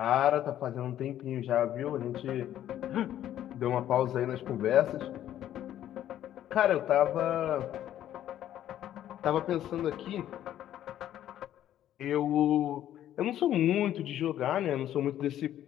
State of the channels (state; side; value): quieter; right; 11.8 dB